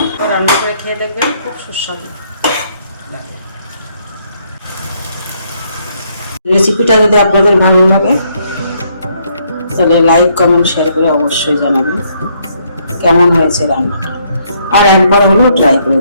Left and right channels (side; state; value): both; inverted; correlation -0.70